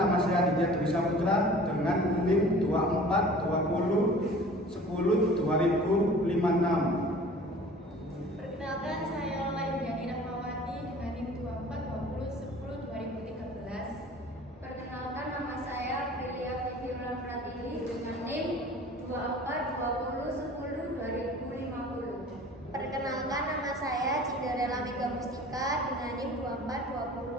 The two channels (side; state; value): both; normal; correlation 0.45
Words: saya Aditya Dwi Saputra dengan NIM 2420102056. Perkenalkan, saya Lola Indiani Rahmawati dengan NIM 2420102013. Perkenalkan, nama saya Prilia Vivi Pratiwi dengan NIM 2420102050. Perkenalkan, nama saya Cinderella Mega Mustika dengan NIM